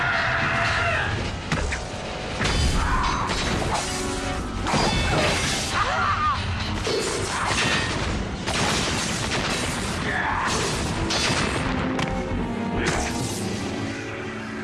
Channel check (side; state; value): both; identical; correlation 1.00